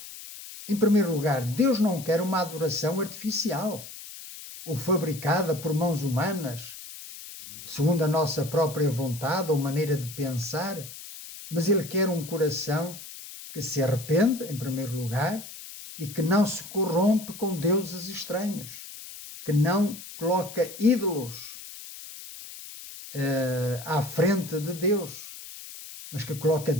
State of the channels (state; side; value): noise; left; hiss, 13 dB below the sound